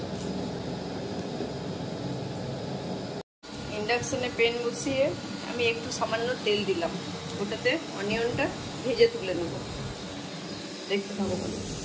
ইন্ডাকশনে প্যান বসিয়ে আমি একটু সামান্য তেল দিলাম, ওটাতে অনিয়নটা ভেজে তুলে নেব। দেখতে থাকো বলো।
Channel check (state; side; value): identical; both; correlation 1.00